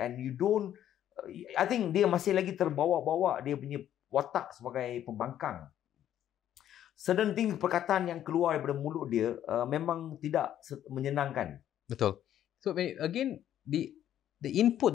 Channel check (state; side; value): quieter; right; 11.1 dB